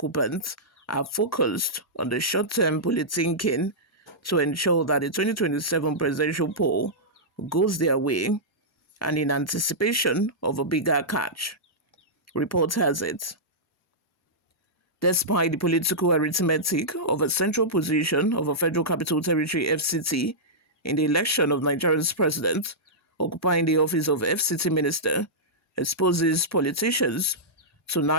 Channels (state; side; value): normal; both; correlation -0.12